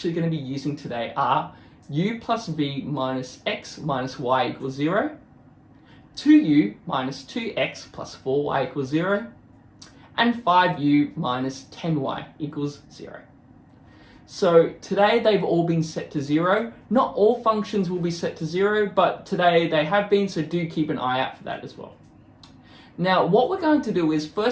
going to be using today are u plus v minus x minus y equals 0, 2u minus 2x plus 4y equals 0, and 5u minus 10y equals 0. So today they've all been set to 0. Not all functions will be set to 0, but today they have been, so do keep an eye out for that as well. Now what we're going to do is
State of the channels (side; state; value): both; identical; correlation 1.00